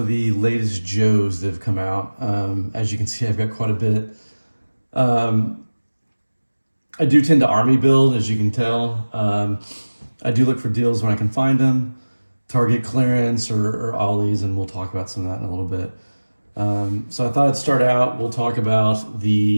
the latest Joes that have come out. As you can see, I've got quite a bit. Um, I do tend to army build, as you can tell. I do look for deals when I can find them, target clearance or ollies, and we'll talk about some of that in a little bit. So I thought I'd start out, we'll talk about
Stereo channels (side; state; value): both; inverted; correlation -1.00